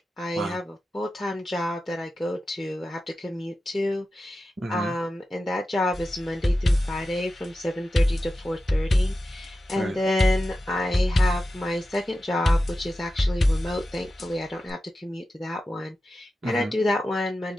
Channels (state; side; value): normal; both; correlation 0.93